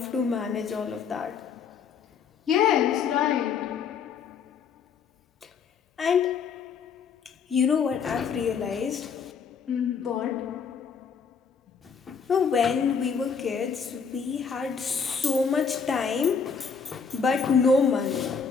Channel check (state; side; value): quieter; right; 6.1 dB